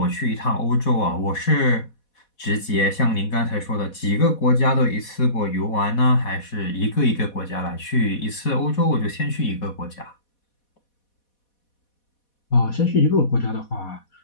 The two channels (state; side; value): late; right; 4.1 ms